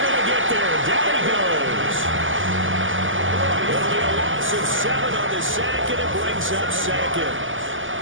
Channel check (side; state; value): left; late; 0.58 ms